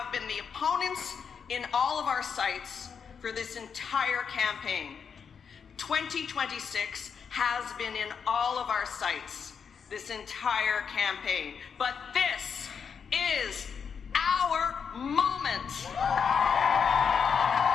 been the opponents in all of our sites for this entire campaign. 2026 has been in all of our sites this entire campaign. But this is our moment.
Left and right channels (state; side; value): quieter; right; 6.5 dB